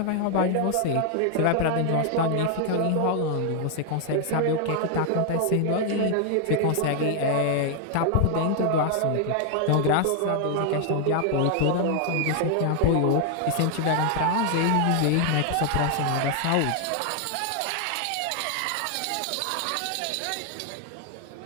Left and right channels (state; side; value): different; both; correlation 0.00